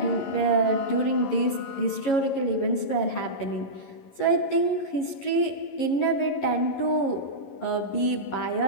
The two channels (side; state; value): right; late; 11 ms